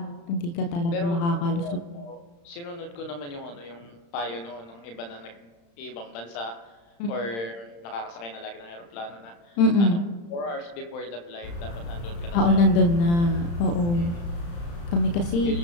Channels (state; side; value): late; right; 35 ms